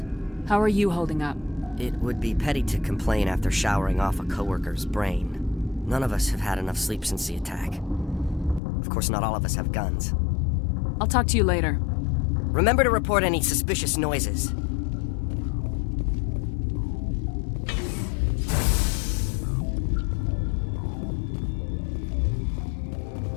How are you holding up? It would be petty to complain after showering off a coworker's brain. None of us have had enough sleep since the attack. Of course, not all of us have guns. I'll talk to you later. Remember to report any suspicious noises.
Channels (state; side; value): drops out; right; at 8.6 s